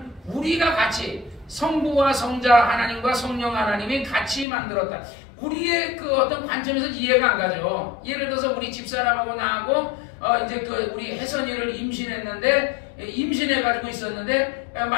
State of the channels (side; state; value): right; drops out; at 4.5 s